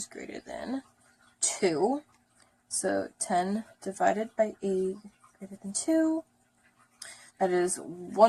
greater than 2. So 10 divided by 8 greater than 2. That is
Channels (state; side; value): identical; both; correlation 1.00